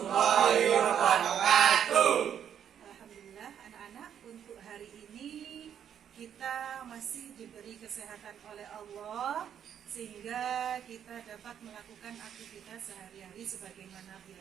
wabarakatuh. Alhamdulillah anak-anak, untuk hari ini kita masih diberi kesehatan oleh Allah sehingga kita dapat melakukan aktivitas sehari-hari sebagaimana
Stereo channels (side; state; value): left; quieter; 9.0 dB